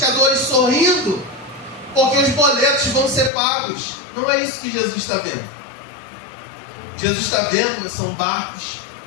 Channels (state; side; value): drops out; right; at 3.3 s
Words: sorrindo, porque os boletos vão ser pagos. Não é isso que Jesus está vendo. Jesus está vendo são barcos